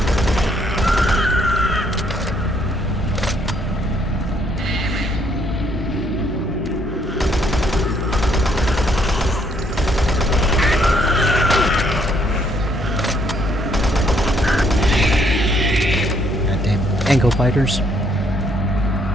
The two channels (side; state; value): both; normal; correlation 0.69